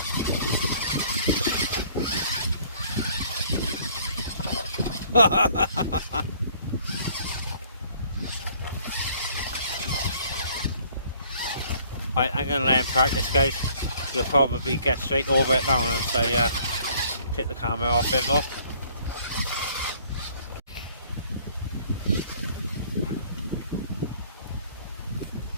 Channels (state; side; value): inverted; both; correlation -0.59